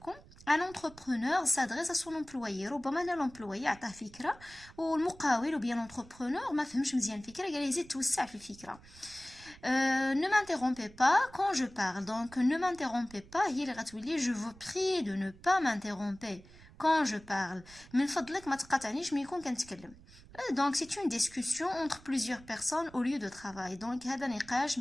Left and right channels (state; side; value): noise; right; rumble, 22 dB below the sound